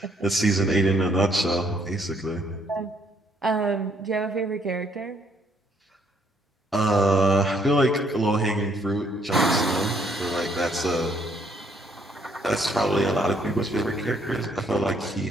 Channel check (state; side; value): normal; both; correlation 0.68